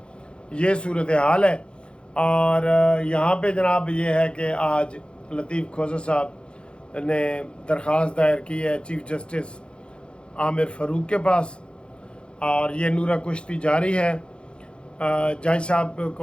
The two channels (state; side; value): late; right; 0.055 ms